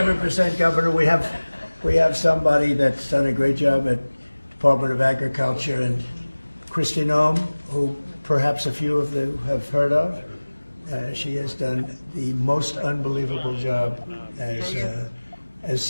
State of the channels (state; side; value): inverted; both; correlation -1.00